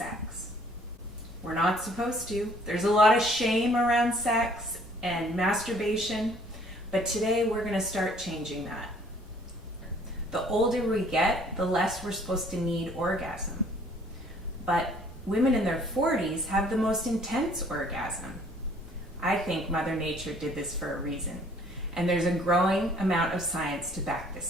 We're not supposed to. There's a lot of shame around sex and masturbation, but today we're going to start changing that. The older we get, the less we're supposed to need orgasm. But women in their 40s have the most intense orgasm. I think Mother Nature did this for a reason, and there's a growing amount of science to back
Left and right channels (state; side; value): normal; both; correlation 0.58